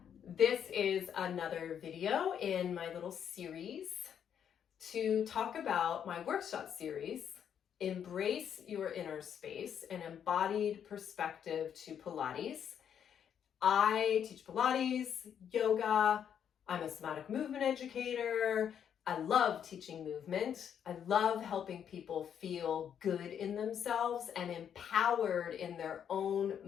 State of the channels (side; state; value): right; quieter; 8.6 dB